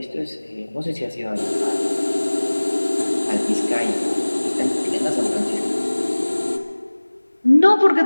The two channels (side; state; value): both; inverted; correlation -1.00